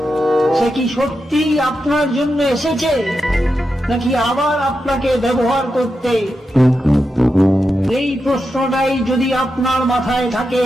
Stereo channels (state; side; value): normal; both; correlation 0.88